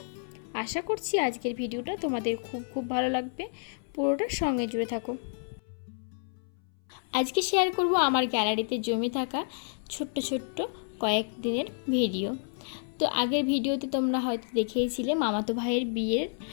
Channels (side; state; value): right; silent; 58 dB below the other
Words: আশা করছি আজকের ভিডিওটা তোমাদের খুব খুব ভালো লাগবে, পুরোটার সঙ্গে জুড়ে থাকো। আজকে শেয়ার করব আমার গ্যালারিতে জমে থাকা ছোট্ট ছোট্ট কয়েক দিনের ভিডিও। তো আগের ভিডিওতে তোমরা হয়তো দেখেইছিলে মামাতো ভাইয়ের বিয়ের